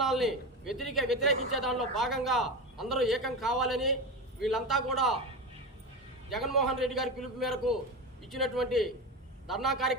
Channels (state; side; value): normal; both; correlation 0.21